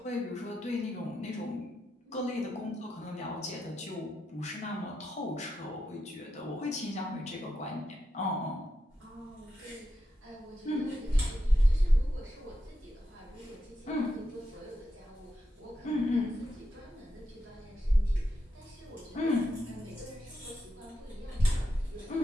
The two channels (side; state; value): both; normal; correlation 0.86